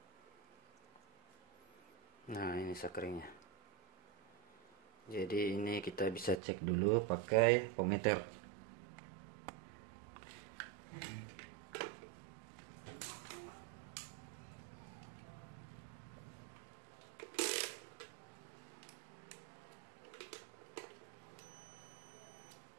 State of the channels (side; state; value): left; drops out; at 6.4 s